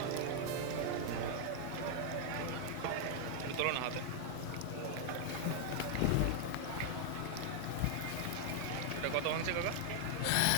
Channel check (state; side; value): different; both; correlation 0.00